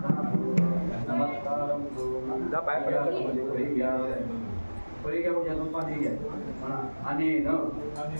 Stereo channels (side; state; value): both; inverted; correlation -1.00